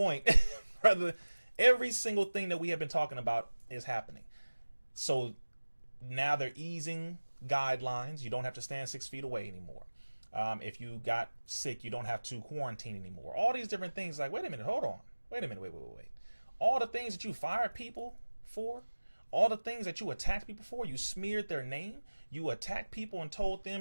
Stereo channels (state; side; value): inverted; both; correlation -1.00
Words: brother, every single thing that we have been talking about is happening. So now they're easing guidelines. You don't have to stand 6 feet away anymore. If you got sick, you don't have to quarantine anymore. All these different things. Like, wait a minute, hold on. Wait a minute, wait. All the things that you fired people for, all the things that you attacked people for, you smeared their name, you attacked people and told